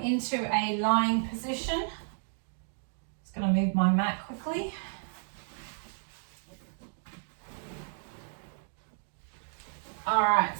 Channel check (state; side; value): silent; left; digital silence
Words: into a lying position. Just going to move my mat quickly. All right,